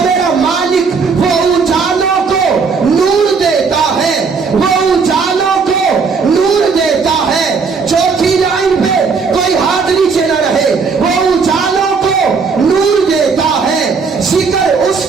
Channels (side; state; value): left; quieter; 5.1 dB